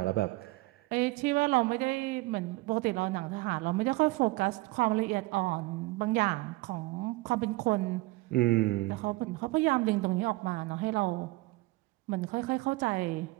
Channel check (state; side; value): quieter; left; 21.2 dB